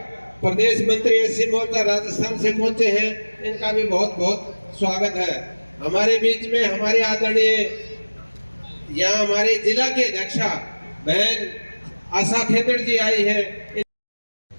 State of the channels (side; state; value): both; inverted; correlation -1.00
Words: प्रदेश मंत्री एससी मोर्चा राजस्थान से पहुंचे हैं, इनका भी बहुत बहुत स्वागत है। हमारे बीच में हमारे आदरणीय यहाँ हमारे जिला के अध्यक्षा बहन आशा खेदड़ जी आई है।